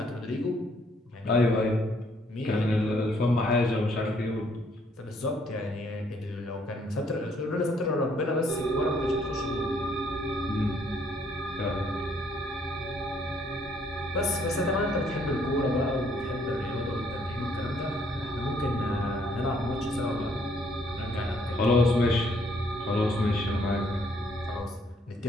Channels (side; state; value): both; normal; correlation 0.67